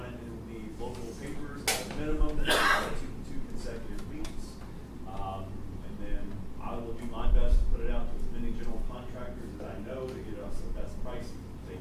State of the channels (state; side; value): identical; both; correlation 1.00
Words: it in the local papers at a minimum, 2 consecutive weeks. And then I will do my best to put it out to as many general contractors as I know to get us the best pricing to